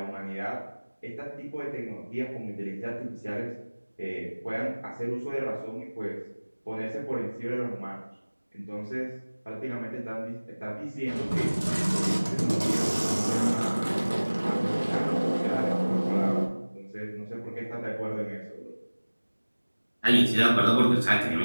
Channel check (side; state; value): both; inverted; correlation -1.00